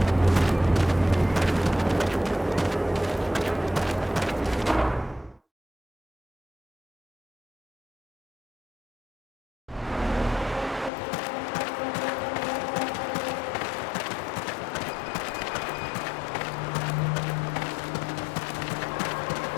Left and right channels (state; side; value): drops out; right; at 10.9 s